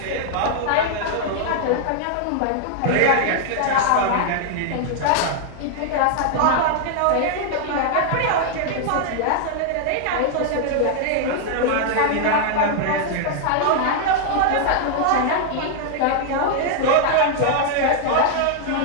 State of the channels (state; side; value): different; both; correlation 0.00